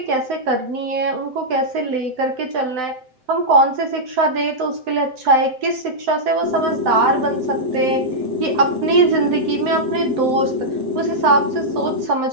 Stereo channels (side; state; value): left; late; 7.8 ms